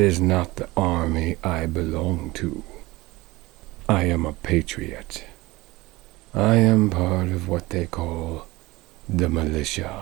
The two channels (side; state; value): left; quieter; 20.8 dB